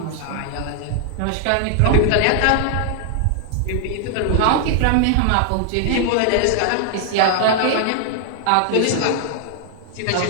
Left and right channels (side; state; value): both; different; correlation 0.00